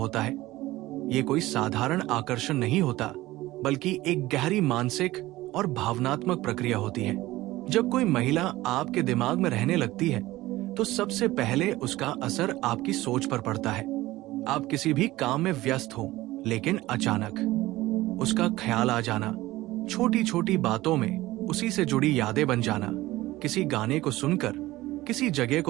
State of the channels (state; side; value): quieter; left; 17.7 dB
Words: है। ये कोई साधारण आकर्षण नहीं होता, बल्कि एक गहरी मानसिक और भावनात्मक प्रक्रिया होती है। जब कोई महिला आपके दिमाग में रहने लगती है, तो सबसे पहले उसका असर आपकी सोच पर पड़ता है। आप किसी भी काम में व्यस्त हो, लेकिन अचानक उसका ख्याल आ जाना, छोटी छोटी बातों में उसी से जुड़ी यादें बन जाना, किसी गाने को सुनकर, किसी जगह